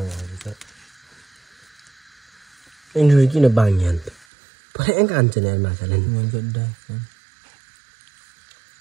यिनीहरू किन बाङ्ग्या अन्त पऱ्याङ्क हान्छ नि यार माछाले नि मन गड्डा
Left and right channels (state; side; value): drops out; left; at 4.2 s